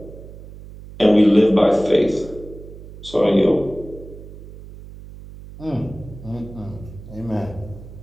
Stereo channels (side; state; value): right; noise; hum, 16 dB below the sound